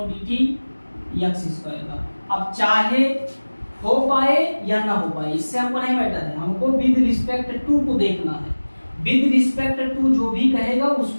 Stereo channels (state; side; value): inverted; both; correlation -1.00